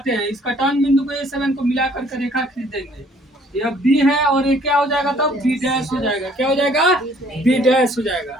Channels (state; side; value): normal; both; correlation 0.60